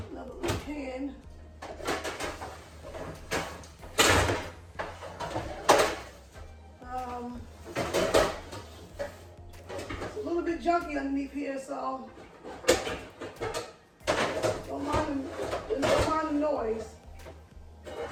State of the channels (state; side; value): identical; both; correlation 1.00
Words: little pan. It's a little bit junky underneath here, so don't mind the noise.